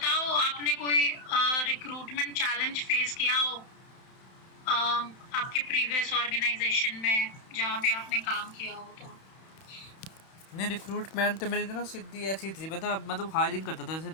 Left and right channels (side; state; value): right; late; 31 ms